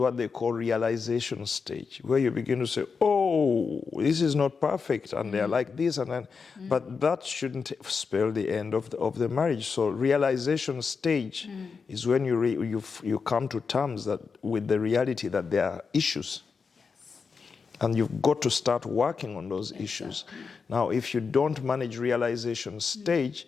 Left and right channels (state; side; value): quieter; right; 5.3 dB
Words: they call realization stage, where you begin to say, oh, this is not perfect, and they're like this, and then, but that shouldn't spell the end of the marriage. So realization stage is when you come to terms with the reality that there are issues. And you've got to start working on those issues. Now, if you don't manage realization stage,